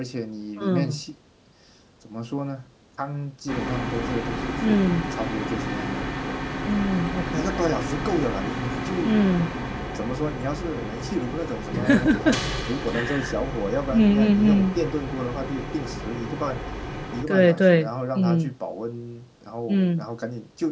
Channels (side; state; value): both; identical; correlation 1.00